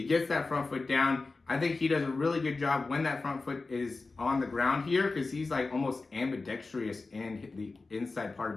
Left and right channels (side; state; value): right; quieter; 3.7 dB